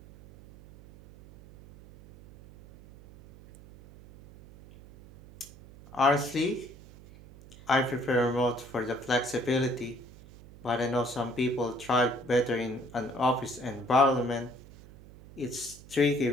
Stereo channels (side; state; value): right; noise; hum, 20 dB below the sound